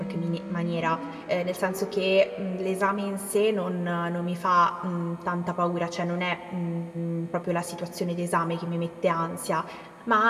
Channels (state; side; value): identical; both; correlation 1.00